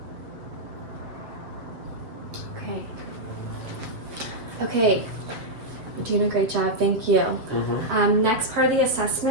Okay, You're doing a great job, thank you. Next part of the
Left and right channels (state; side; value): late; left; 7.5 ms